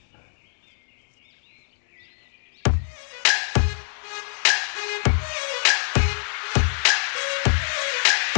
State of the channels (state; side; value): silent; right; 62 dB below the other